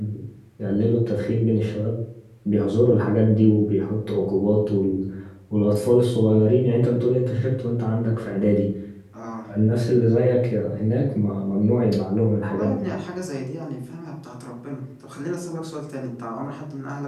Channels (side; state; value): both; identical; correlation 1.00